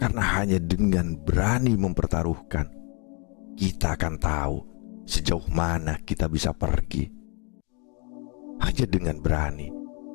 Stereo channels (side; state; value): right; quieter; 33.9 dB